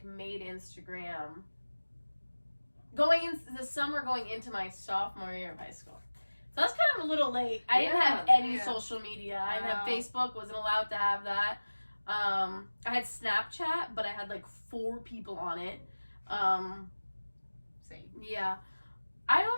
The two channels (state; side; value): inverted; both; correlation -1.00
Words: going into the summer going into my sophomore year of high school. So that's kind of a little late. I didn't have any social media. I didn't have Facebook, wasn't allowed to have that. I had Snapchat, but I had like 4 people on it. Same. Yeah. I